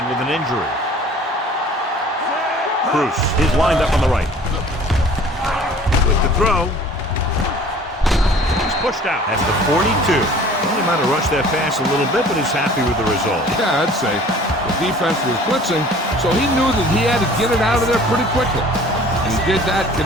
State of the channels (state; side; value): normal; both; correlation 0.49